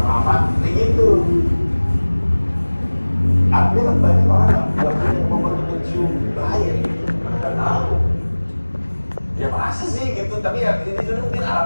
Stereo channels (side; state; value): both; inverted; correlation -1.00